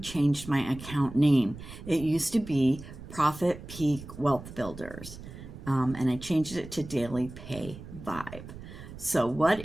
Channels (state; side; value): noise; right; rumble, 14 dB below the sound